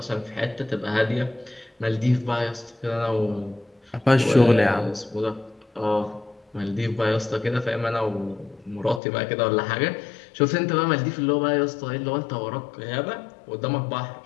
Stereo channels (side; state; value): right; drops out; at 9.0 s